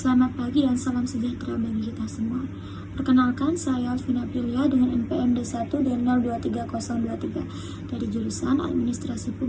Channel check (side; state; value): both; identical; correlation 1.00